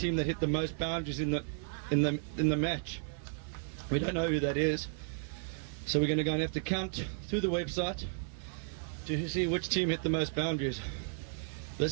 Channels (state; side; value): silent; left; 55 dB below the other